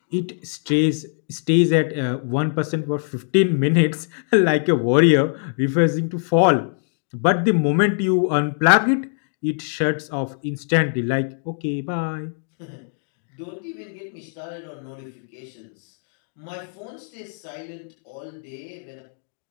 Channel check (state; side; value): silent; right; digital silence